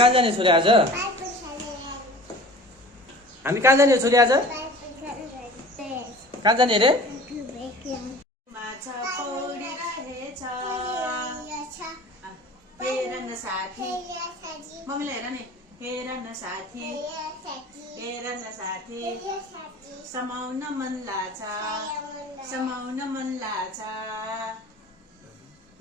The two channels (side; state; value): both; normal; correlation 0.42